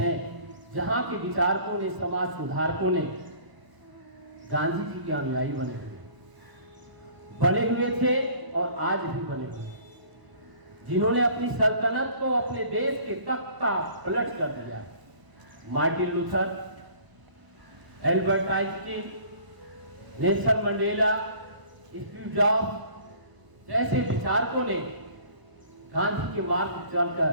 जहां के विचारकों ने, समाज सुधारकों ने गांधी जी के अनुयायी बने हुए थे और आज भी बने हुए, जिन्होंने अपनी सल्तनत को अपने देश के तख्त का पलट कर दिया। Martin Luther, Albert Einstein, Nelson Mandela, Steve jobs जैसे विचारकों ने गांधी के मार्ग पर चलकर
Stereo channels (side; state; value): left; late; 1.0 ms